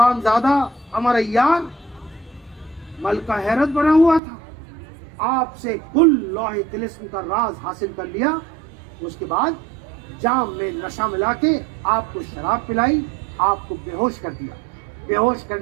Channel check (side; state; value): left; drops out; at 4.2 s